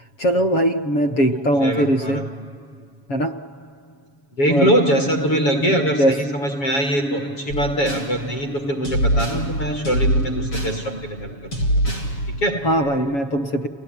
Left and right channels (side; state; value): right; late; 7.2 ms